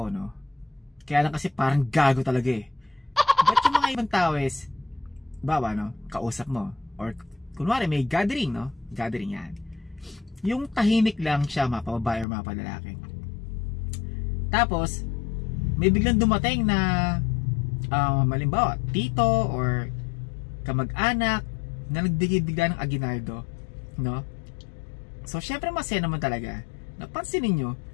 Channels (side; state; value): right; drops out; at 12.2 s